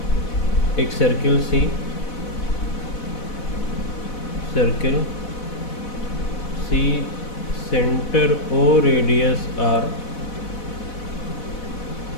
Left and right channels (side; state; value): right; late; 4.1 ms